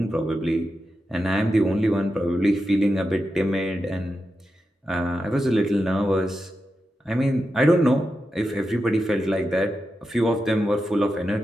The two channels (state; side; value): normal; both; correlation 0.89